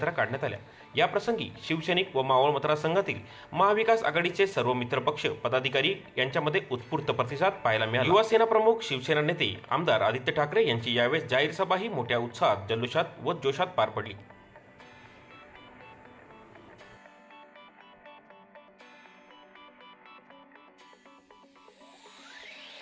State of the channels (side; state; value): both; identical; correlation 1.00